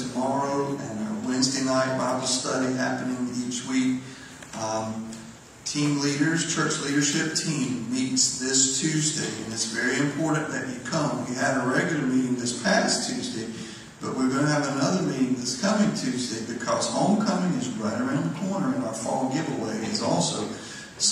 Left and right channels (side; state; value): both; identical; correlation 1.00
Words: and our Wednesday night Bible study happening each week. Team leaders, church leadership team meets this Tuesday, and it's very important that you come. We had a regular meeting this past Tuesday, but we're going to have another meeting this coming Tuesday because homecoming is right around the corner, and our fall giveaway is also.